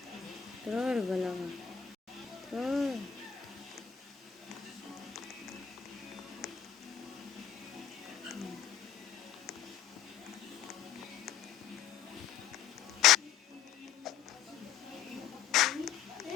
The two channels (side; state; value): right; quieter; 9.0 dB